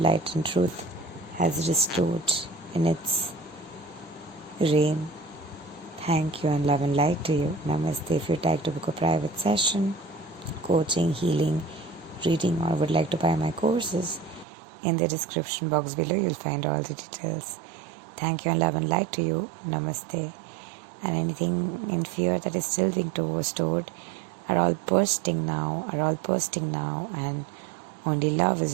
and truth has restored in its reign. Thank you, and love and light to you. Namaste. If you'd like to book a private session, coaching, healing, reading, or would like to buy my courses, in the description box below you'll find all the details. Thank you, and love and light to you. Namaste. And anything in fear that is still being stored are all bursting now, and only love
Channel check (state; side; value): drops out; left; at 14.5 s